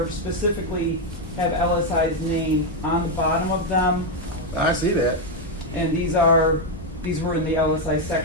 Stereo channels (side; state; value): both; normal; correlation 0.03